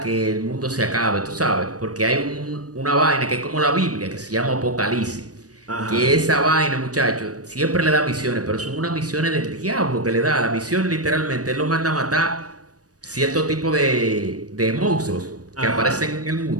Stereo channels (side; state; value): left; late; 0.67 ms